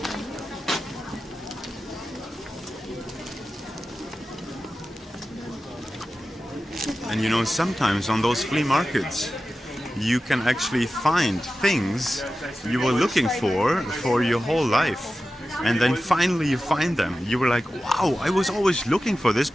And you know, sometimes on those flea markets, you can actually find things you were looking for your whole life. And then finally you find them. You were like, wow, I was always looking for this,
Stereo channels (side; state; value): both; normal; correlation 0.93